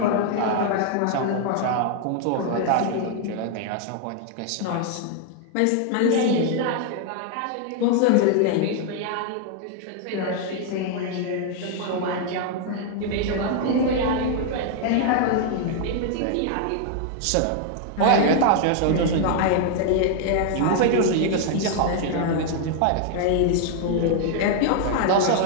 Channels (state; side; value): different; both; correlation 0.00